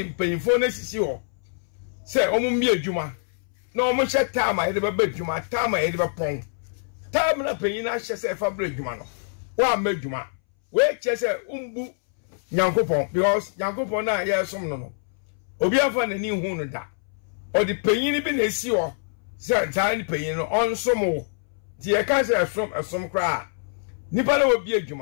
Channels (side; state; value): right; silent; 62 dB below the other